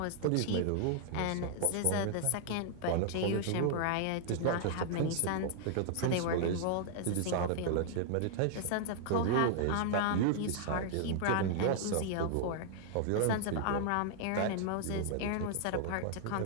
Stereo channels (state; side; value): different; both; correlation 0.00